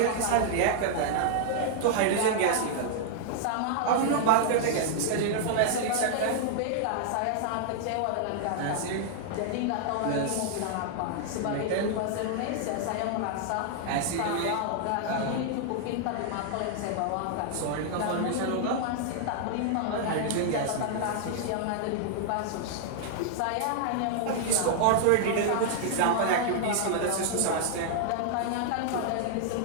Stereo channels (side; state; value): both; different; correlation -0.01